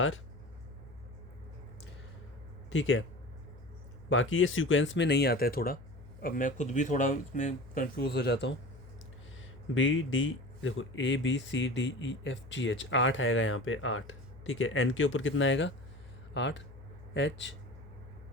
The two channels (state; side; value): noise; left; hum, 18 dB below the sound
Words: ठीक है, बाकी ये सीक्वेंस में नहीं आता है थोड़ा, अब मैं खुद भी थोड़ा इसमें कंफ्यूज हो जाता हूँ। BD देखो ABCDEFGH 8 आएगा यहाँ पे, 8। ठीक है। एन के ऊपर कितना आएगा 8, एच